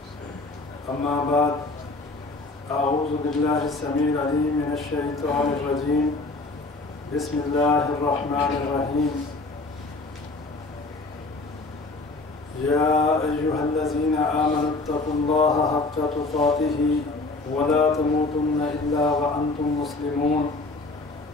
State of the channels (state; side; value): quieter; right; 3.3 dB